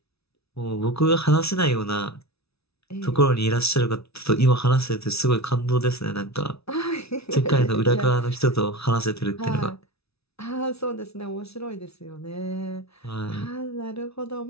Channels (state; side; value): late; right; 0.79 ms